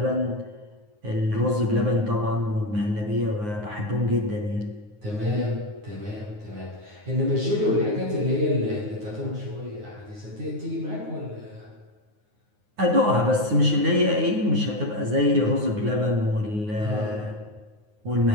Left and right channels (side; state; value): left; late; 9.5 ms